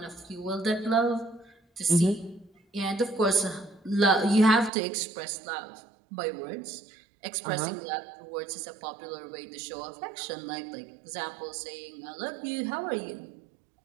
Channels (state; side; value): drops out; left; at 4.7 s